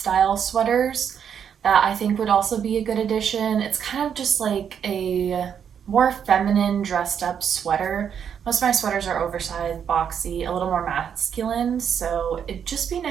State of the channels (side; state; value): left; quieter; 8.0 dB